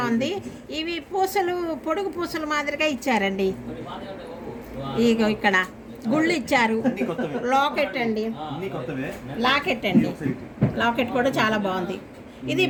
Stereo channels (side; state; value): both; identical; correlation 1.00